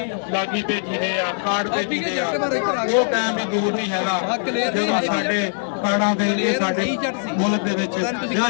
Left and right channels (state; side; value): silent; right; 64 dB below the other